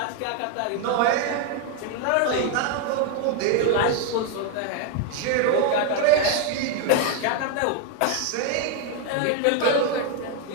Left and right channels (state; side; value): different; both; correlation 0.01